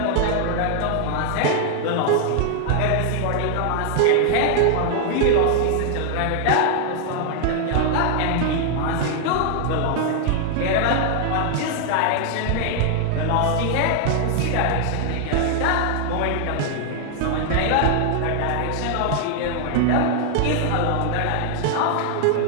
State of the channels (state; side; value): different; both; correlation 0.00